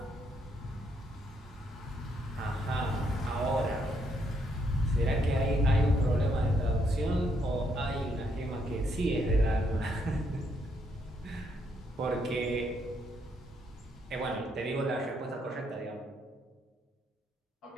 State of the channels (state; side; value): normal; both; correlation 0.74